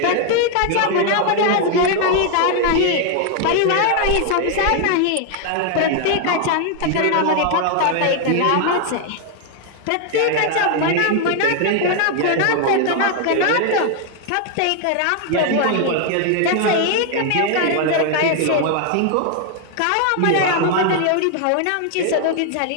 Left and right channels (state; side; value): different; both; correlation 0.00